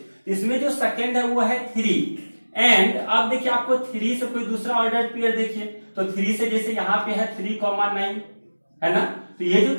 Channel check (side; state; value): both; inverted; correlation -1.00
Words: इसमें जो सेकंड है वो है 3 एंड अब देखिए आपको 3 से कोई दूसरा ऑर्डर पेयर देखिए तो 3 से जैसे यहाँ पे है 3 9 है ना, तो ये जो